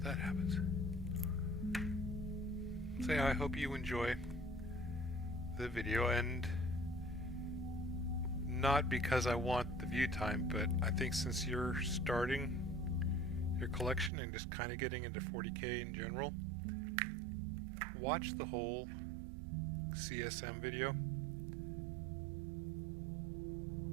that happens. So yeah, I hope you enjoy the video, and not because I want the view time, but I think since you're starting your collection and just kind of getting into 40K in general, watch the whole CSM video.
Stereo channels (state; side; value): drops out; left; at 14.1 s